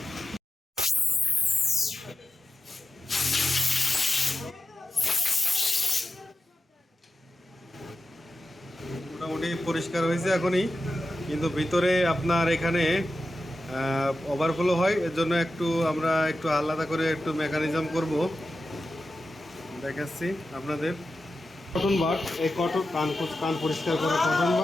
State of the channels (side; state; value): both; normal; correlation 0.92